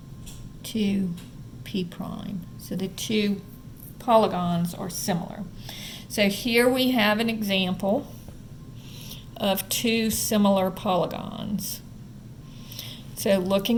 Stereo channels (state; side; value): identical; both; correlation 1.00